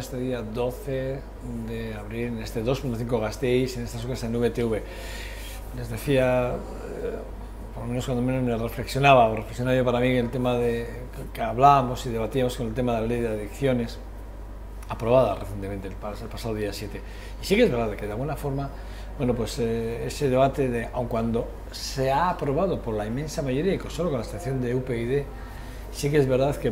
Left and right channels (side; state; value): both; identical; correlation 1.00